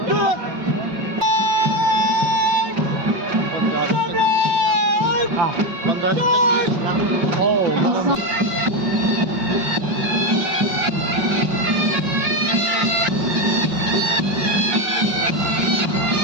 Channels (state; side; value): late; left; 5.4 ms